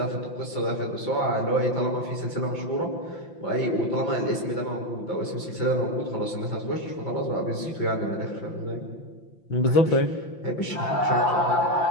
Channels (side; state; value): right; late; 5.8 ms